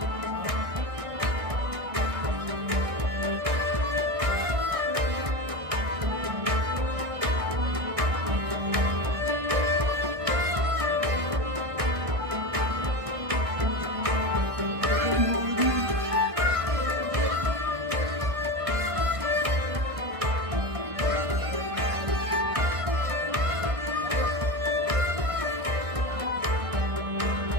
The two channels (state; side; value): late; left; 1.6 ms